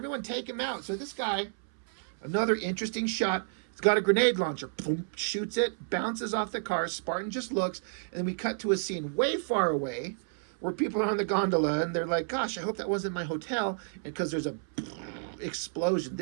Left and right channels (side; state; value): left; silent; 57 dB below the other